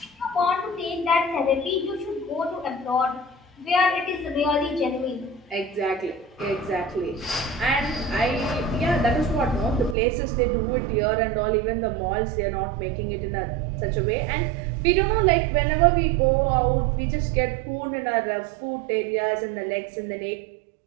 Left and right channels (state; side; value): drops out; left; at 10.0 s